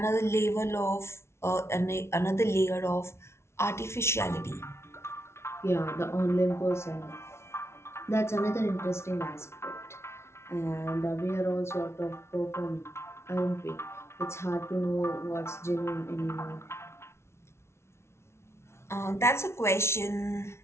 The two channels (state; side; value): late; right; 0.13 ms